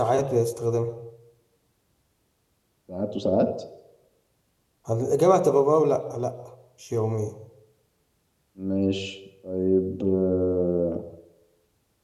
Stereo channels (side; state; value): both; identical; correlation 1.00